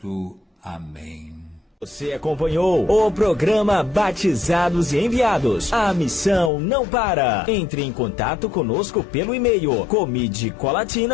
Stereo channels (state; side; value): drops out; right; at 6.5 s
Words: Amém. Você acompanhou o programa Batizados e Enviados. A missão não para. Entre em contato conosco pelo e-mail